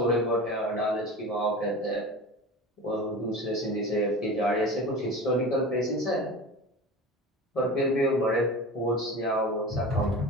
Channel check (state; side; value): normal; both; correlation 0.32